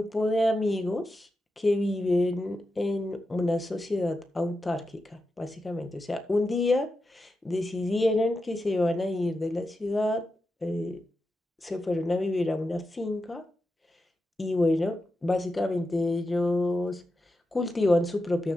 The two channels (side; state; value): both; normal; correlation 0.89